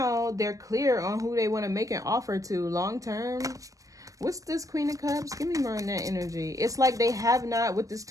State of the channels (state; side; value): late; left; 0.16 ms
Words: they're clear on who they want to make an offer to long term. What's this Queen of Cups? Give me more on that energy. It's like they have not, with this